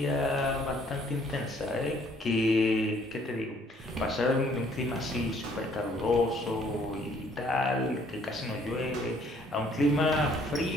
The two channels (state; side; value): normal; both; correlation 0.62